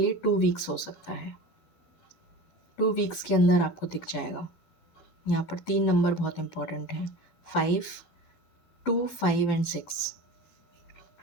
2 वीक्स हो सकता है, 2 वीक्स के अंदर आपको दिख जाएगा। यहाँ पर 3 नंबर बहुत इंपॉर्टेंट है, 5, 2, 5 एंड 6।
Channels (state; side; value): late; right; 12 ms